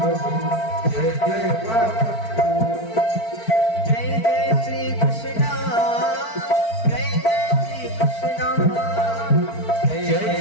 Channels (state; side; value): late; right; 4.5 ms